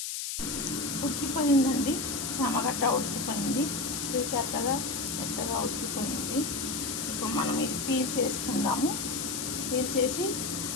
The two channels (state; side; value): noise; left; hiss, 3 dB below the sound